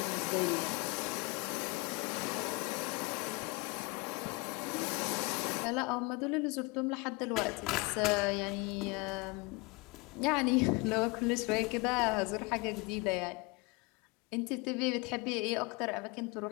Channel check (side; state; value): right; quieter; 27.5 dB